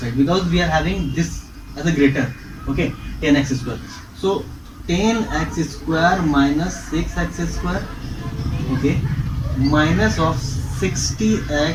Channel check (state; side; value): identical; both; correlation 1.00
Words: because we are having this as a greater. Okay, 10x square. So 10x square minus 6x square. Okay, minus of 60x